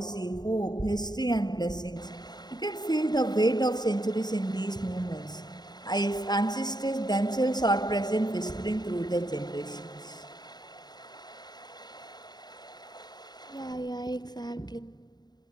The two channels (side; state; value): right; late; 0.20 ms